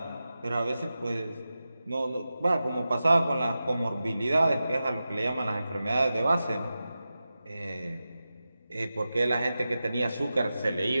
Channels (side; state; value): both; inverted; correlation -0.93